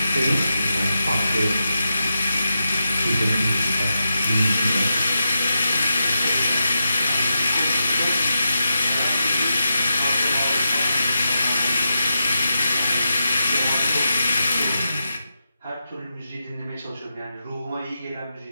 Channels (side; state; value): both; inverted; correlation -0.88